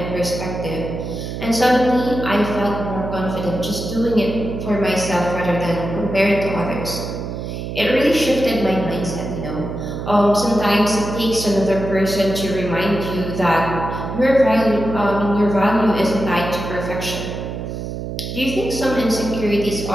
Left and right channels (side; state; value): right; noise; hum, 6 dB below the sound